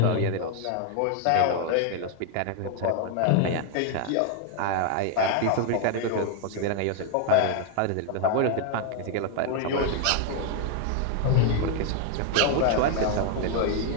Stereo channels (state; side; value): different; both; correlation 0.00